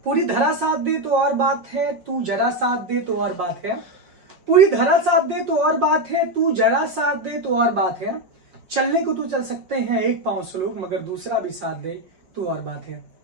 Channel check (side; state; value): left; late; 5.5 ms